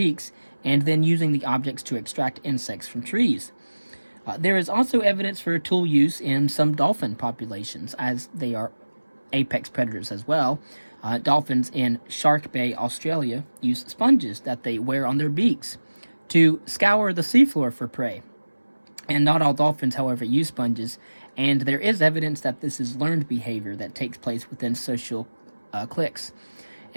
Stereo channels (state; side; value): inverted; both; correlation -1.00